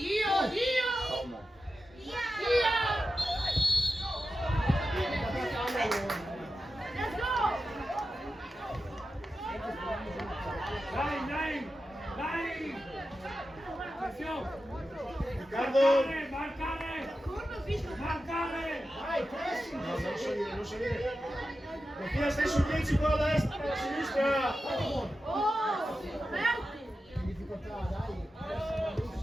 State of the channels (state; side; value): normal; both; correlation 0.91